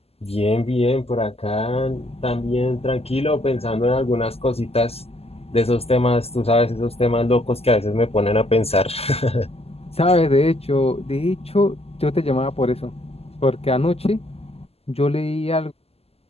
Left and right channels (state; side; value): late; right; 0.29 ms